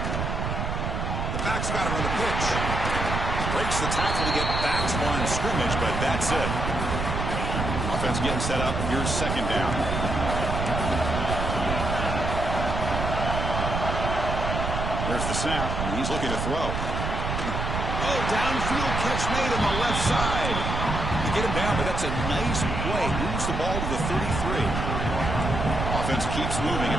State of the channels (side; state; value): right; noise; rumble, 2 dB below the sound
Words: The back's got it on the pitch. Breaks the tackle to get back to line of scrimmage, but that's it. Offense getting set up. Here's second down. There's the snap, and he's looking to throw. Oh, downfield catch made on the left side. They get him down, but that's a nice play. Moves the ball to the 33. Offense keeps moving.